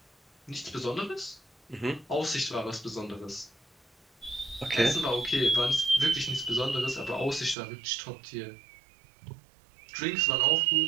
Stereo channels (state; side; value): drops out; left; at 7.6 s